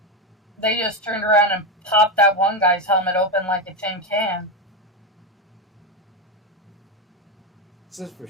They just turned around and popped that one guy's helmet open like a tin can. It's just for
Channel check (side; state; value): both; normal; correlation 0.12